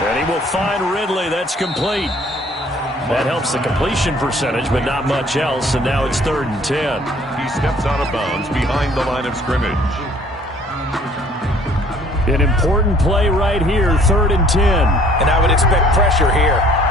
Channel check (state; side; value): normal; both; correlation 0.57